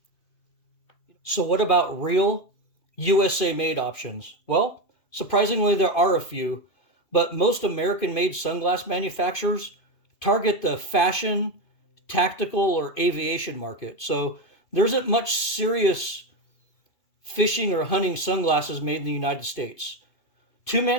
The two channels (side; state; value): right; late; 2.7 ms